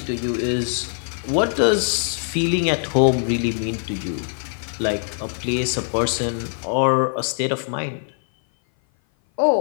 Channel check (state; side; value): silent; right; 56 dB below the other